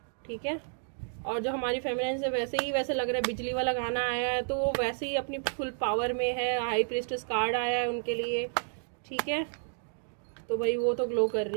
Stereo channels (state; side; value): silent; left; digital silence